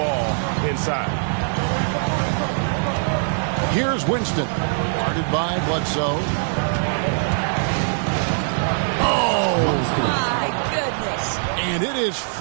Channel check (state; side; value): silent; left; digital silence